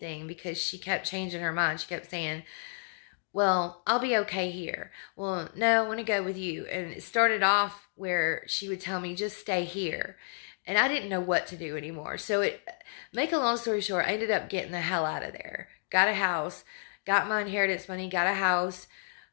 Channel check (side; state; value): right; silent; 57 dB below the other